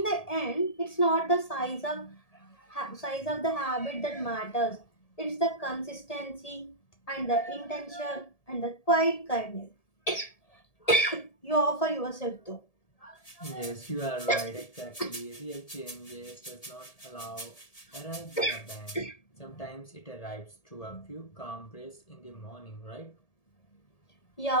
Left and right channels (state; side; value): late; right; 1.7 ms